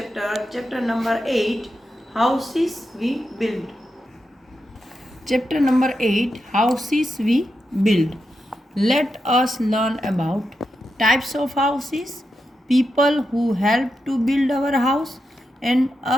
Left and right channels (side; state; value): both; normal; correlation 0.87